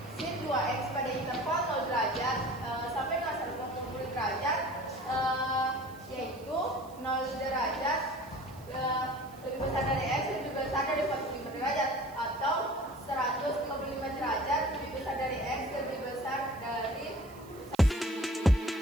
sin 2x pada interval 0 derajat sampai dengan 180 derajat, yaitu 0 derajat lebih besar dari x dan lebih besar dari 45 derajat.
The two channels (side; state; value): right; noise; hiss, 23 dB below the sound